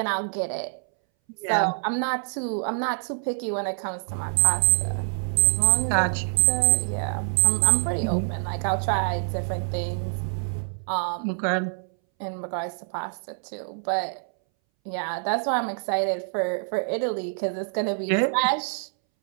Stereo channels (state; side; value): silent; left; 61 dB below the other